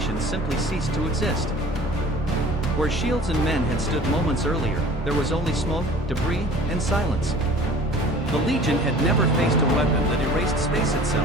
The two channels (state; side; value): normal; both; correlation 0.46